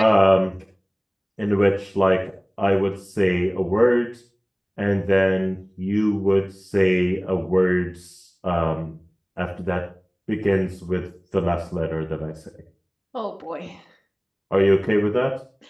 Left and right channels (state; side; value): identical; both; correlation 1.00